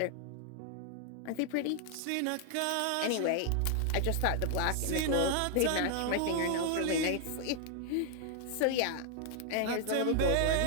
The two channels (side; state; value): both; different; correlation 0.00